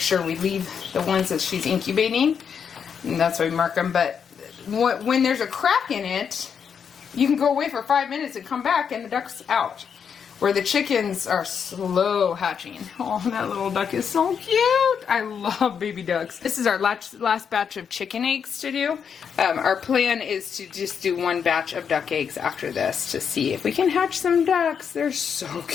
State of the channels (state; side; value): quieter; right; 7.1 dB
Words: we leave the ones that she's incubating. And that's why we mark them. But when there's a crack in it, you can go away for 5 minutes and come back and the duck's out. Where the chickens are slow hatching. Oh, that little duck is so cute. I love baby ducks. This is our last batch of chicken eggs to do. Our plan is to just do one batch of duck eggs after this to see if we can hatch some ducks. They're so